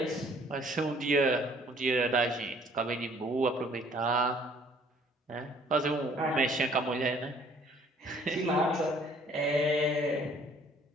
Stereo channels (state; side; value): normal; both; correlation 0.58